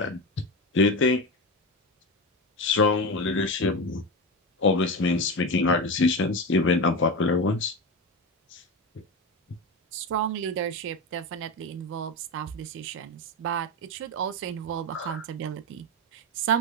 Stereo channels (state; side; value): normal; both; correlation 0.19